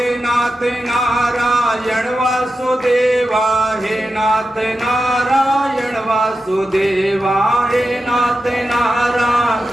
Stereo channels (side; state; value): both; normal; correlation 0.91